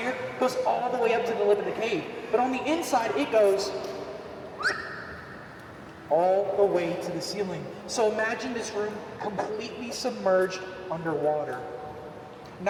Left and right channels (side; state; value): both; identical; correlation 1.00